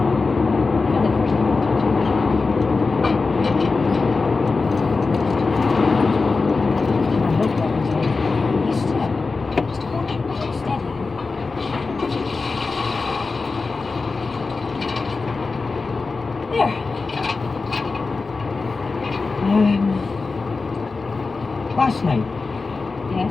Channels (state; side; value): quieter; right; 4.1 dB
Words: Last night, Yes,